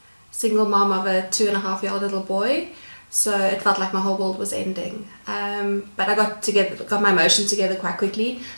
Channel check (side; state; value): both; inverted; correlation -1.00